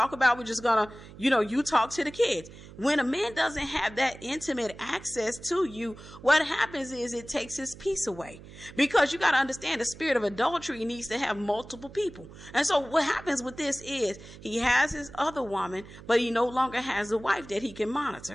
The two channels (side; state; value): right; noise; hum, 17 dB below the sound